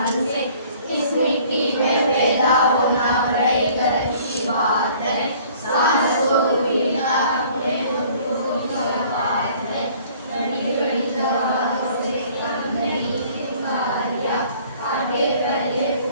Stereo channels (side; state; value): both; inverted; correlation -0.54